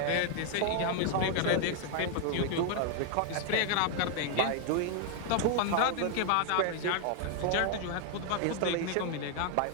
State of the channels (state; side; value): different; both; correlation 0.00